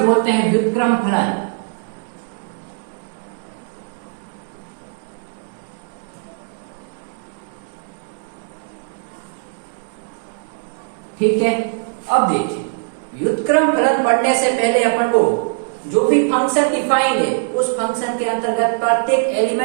बोलते हैं व्युत्क्रम फलन। ठीक है, अब देखिए व्युत्क्रम फलन पढ़ने से पहले अपन को जो भी फंक्शन डिफाइंड है उस फंक्शन के अंतर्गत प्रत्येक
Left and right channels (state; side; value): silent; left; digital silence